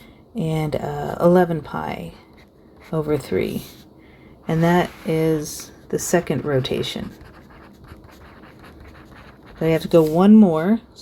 and 11 pi over 3. And that is the second rotation. So I have to go one more,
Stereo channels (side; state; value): both; identical; correlation 1.00